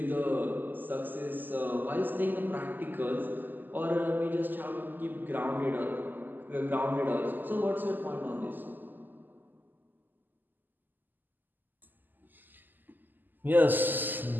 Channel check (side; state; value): left; late; 0.088 ms